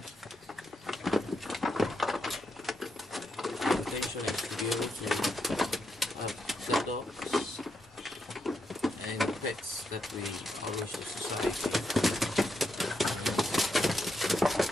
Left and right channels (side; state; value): both; normal; correlation 0.82